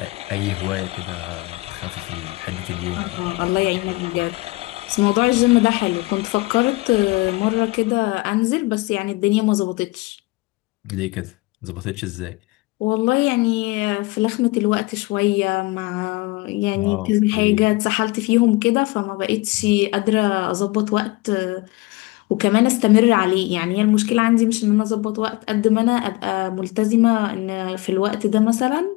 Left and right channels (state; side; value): quieter; right; 22.1 dB